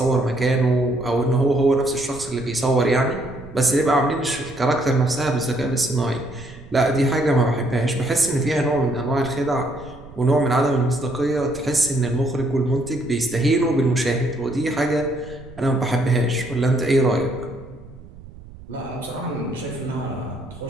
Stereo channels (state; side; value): noise; right; rumble, 19 dB below the sound